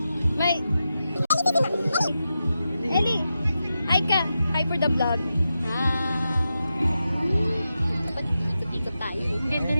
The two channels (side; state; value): both; inverted; correlation -0.89